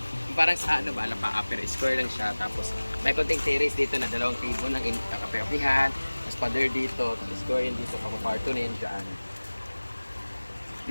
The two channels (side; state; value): both; inverted; correlation -1.00